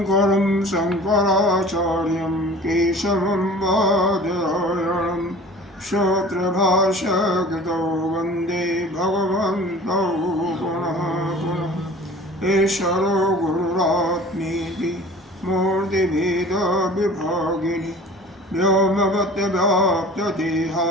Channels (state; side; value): normal; both; correlation 0.43